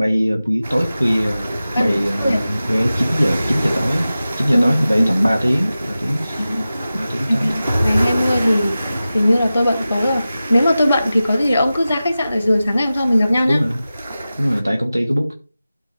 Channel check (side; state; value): both; inverted; correlation -0.95